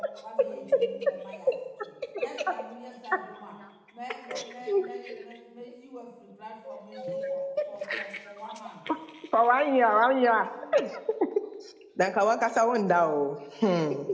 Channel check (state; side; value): identical; both; correlation 1.00